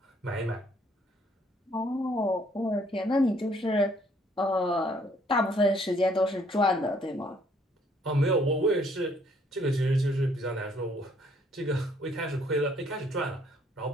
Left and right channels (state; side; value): normal; both; correlation 0.65